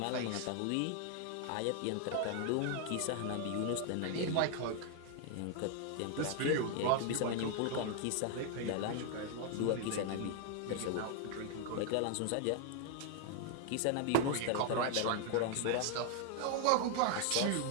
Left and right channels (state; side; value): different; both; correlation 0.00